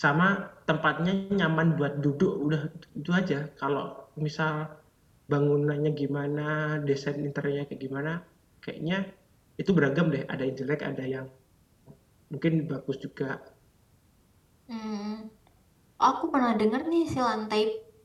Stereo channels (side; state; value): both; identical; correlation 1.00